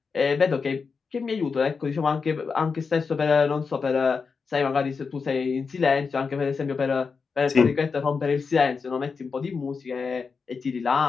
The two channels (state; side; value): quieter; right; 5.2 dB